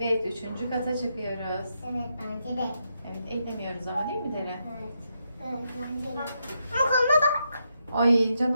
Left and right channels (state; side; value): inverted; both; correlation -0.82